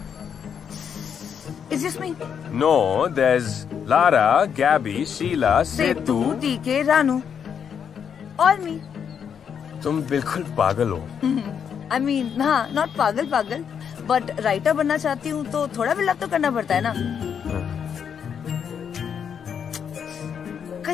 It's just me. No, there's Lara, Gabby, Sheila, Setu, Setu. टीके, रानू और मी। तुम बिल्कुल पागल हो। I mean, हाँ, not पागल, बट राइटर बनना चाहती हूँ तो थोड़ा बिल्डअप तो करना पड़ता है ना।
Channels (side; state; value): right; quieter; 7.6 dB